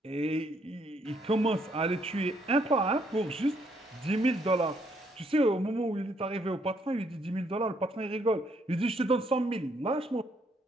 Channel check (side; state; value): both; normal; correlation 0.71